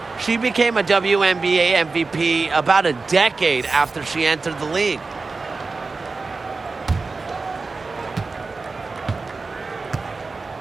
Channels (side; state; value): left; quieter; 4.0 dB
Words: She became a WNBA MVP about a decade after she entered the league.